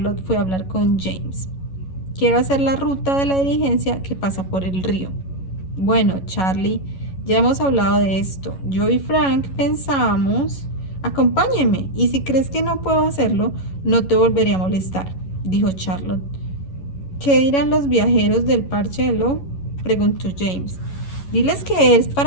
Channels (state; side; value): late; right; 11 ms